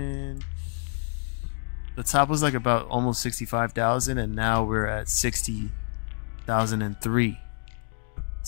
The top was like about almost 65,000, and now we're at 60,003.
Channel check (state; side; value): silent; right; 60 dB below the other